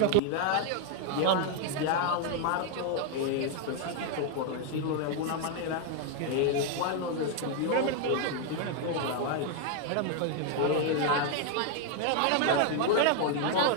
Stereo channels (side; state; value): both; different; correlation 0.00